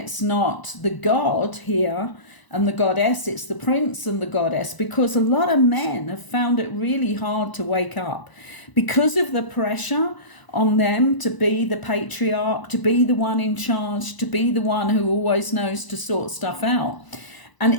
not the God here and the Goddess, it's the Prince and the Goddess, because a lot of men have found it really hard to wake up because of the pressure on them to be the patriarch, to be the one in charge, to be the one who always knows to sort stuff out.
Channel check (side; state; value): right; late; 1.0 ms